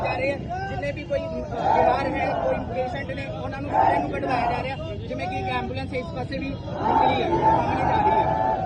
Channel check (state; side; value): identical; both; correlation 1.00